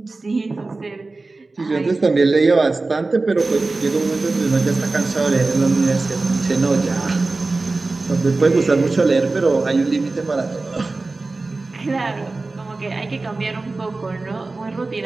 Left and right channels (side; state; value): left; quieter; 3.5 dB